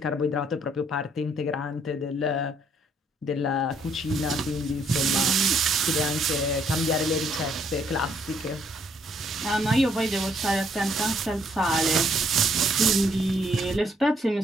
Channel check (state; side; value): normal; both; correlation 0.68